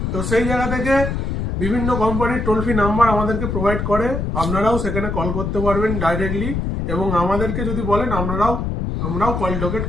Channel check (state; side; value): noise; left; rumble, 2 dB below the sound